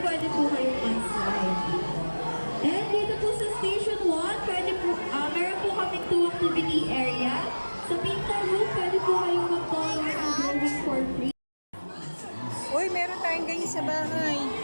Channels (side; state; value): both; inverted; correlation -1.00